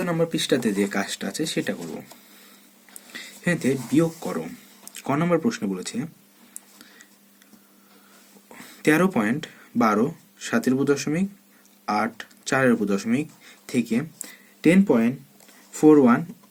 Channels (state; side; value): identical; both; correlation 1.00